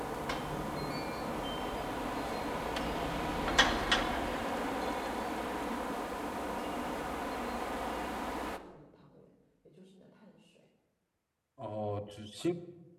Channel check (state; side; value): identical; both; correlation 1.00